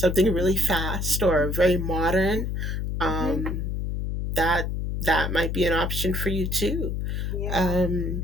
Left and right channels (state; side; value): noise; left; hum, 2 dB below the sound